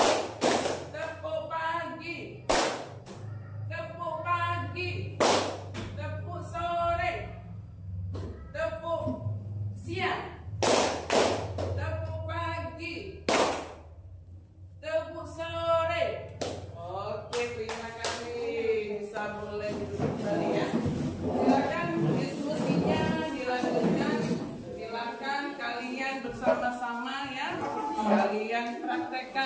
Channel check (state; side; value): identical; both; correlation 1.00